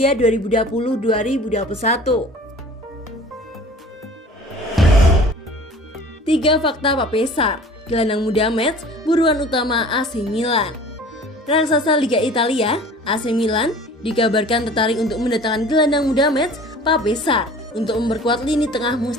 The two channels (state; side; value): normal; both; correlation 0.45